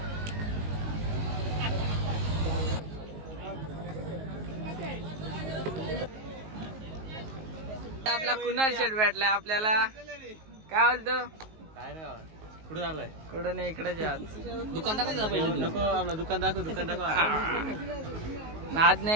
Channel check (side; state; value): left; late; 19 ms